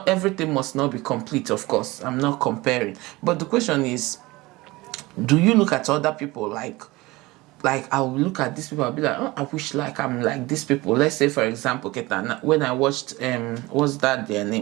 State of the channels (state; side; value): quieter; left; 21.1 dB